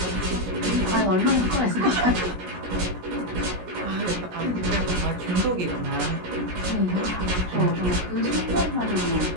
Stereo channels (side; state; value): left; late; 17 ms